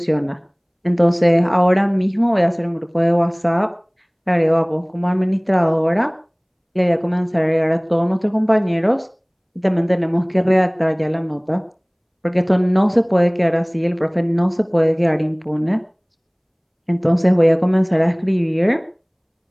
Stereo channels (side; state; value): both; identical; correlation 1.00